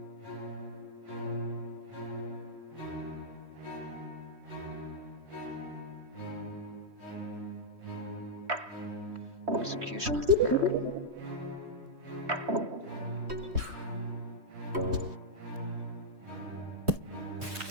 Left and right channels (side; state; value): left; late; 3.1 ms